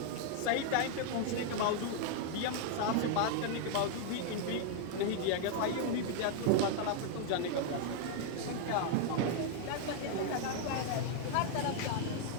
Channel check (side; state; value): both; different; correlation 0.00